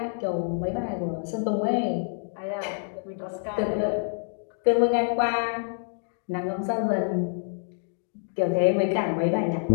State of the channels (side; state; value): right; silent; digital silence